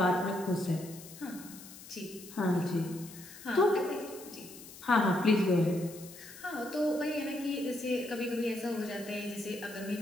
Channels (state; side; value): noise; left; hiss, 16 dB below the sound